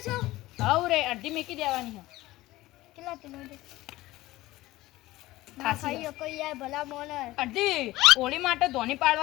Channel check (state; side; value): quieter; right; 17.7 dB